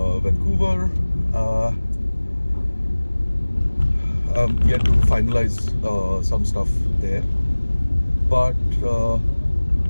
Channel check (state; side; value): inverted; both; correlation -1.00